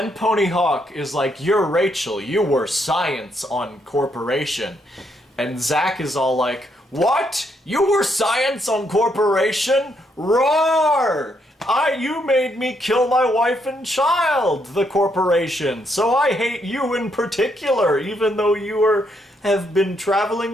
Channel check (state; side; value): normal; both; correlation 0.75